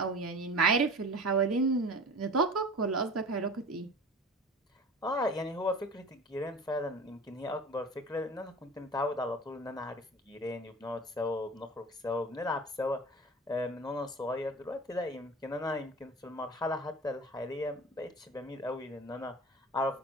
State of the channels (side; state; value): both; normal; correlation 0.37